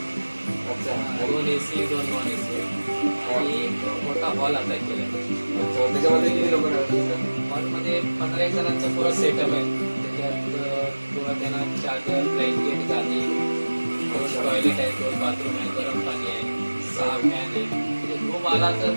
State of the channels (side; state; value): both; inverted; correlation -1.00